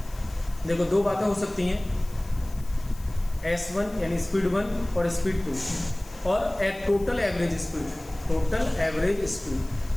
देखो दो बातें हो सकती हैं, S1 यानी स्पीड 1 और स्पीड 2, और total average speed. Total average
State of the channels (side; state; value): left; noise; hiss, 22 dB below the sound